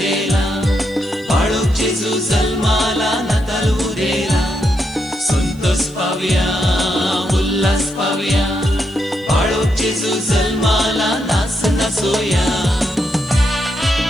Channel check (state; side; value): noise; right; hiss, 30 dB below the sound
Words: बाळूक जेजू जल्माला नाताल उदेला संतोष पावया उल्हास पावया बाळूक जेजू जल्माला नाच नाचोया